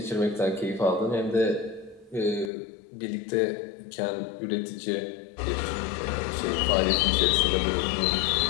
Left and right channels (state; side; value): drops out; right; at 2.5 s